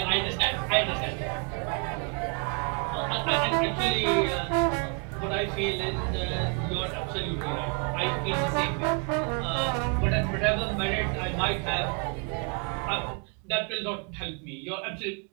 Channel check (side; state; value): left; quieter; 35.8 dB